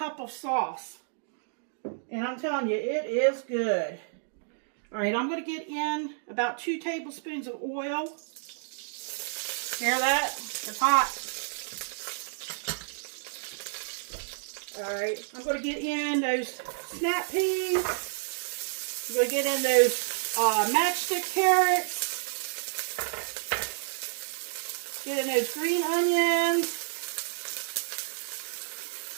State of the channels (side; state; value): left; silent; digital silence